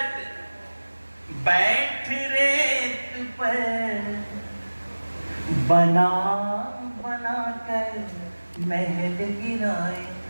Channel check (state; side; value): inverted; both; correlation -1.00